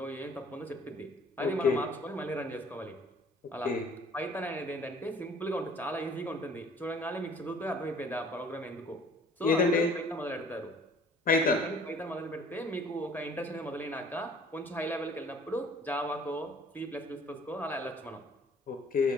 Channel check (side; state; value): both; normal; correlation 0.54